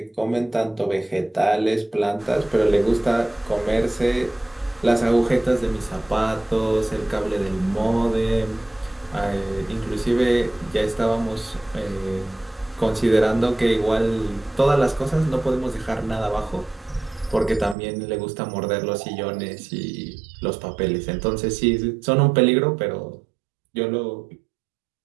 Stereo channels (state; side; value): drops out; left; at 17.8 s